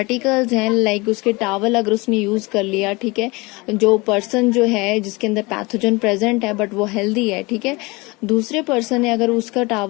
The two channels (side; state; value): right; quieter; 24.7 dB